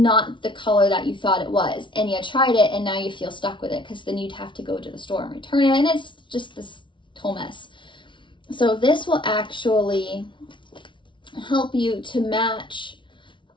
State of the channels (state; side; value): late; right; 0.24 ms